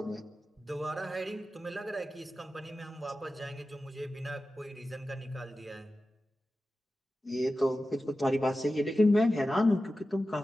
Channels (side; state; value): both; normal; correlation 0.94